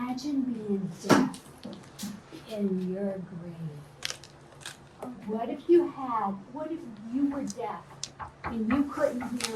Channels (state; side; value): identical; both; correlation 1.00